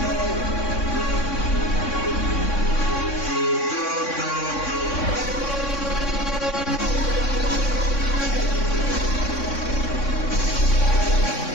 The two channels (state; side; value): late; right; 3.6 ms